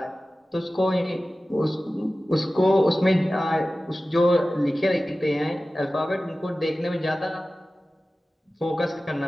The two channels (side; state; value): both; normal; correlation 0.96